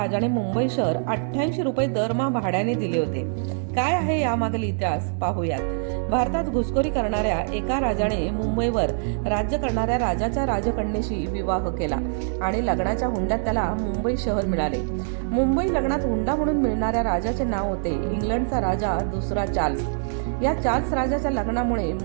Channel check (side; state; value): left; silent; 62 dB below the other